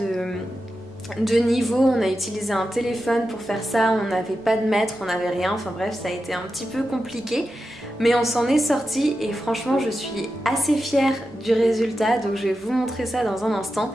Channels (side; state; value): both; normal; correlation 0.90